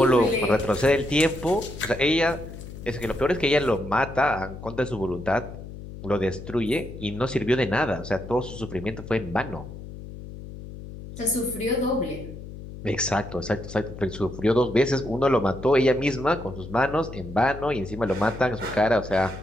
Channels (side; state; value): left; noise; hum, 12 dB below the sound